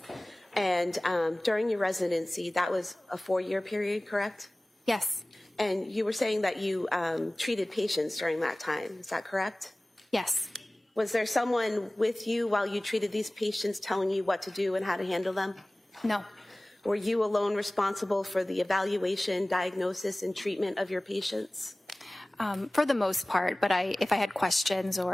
And during your residency, that was a 4-year period, correct? Yes. And you were saying that you treated patients during that time. Is that correct? Yes. Was there someone with you while you treated these patients telling you what to do and how to handle them? No. Were you alone responsible for the evaluation, diagnosis, and treatment of your patients? For the most part, but if I had questions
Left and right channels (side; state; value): both; normal; correlation 0.98